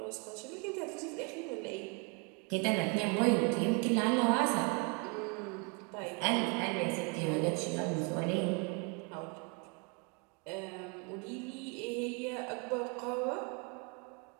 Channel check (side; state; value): left; quieter; 33.4 dB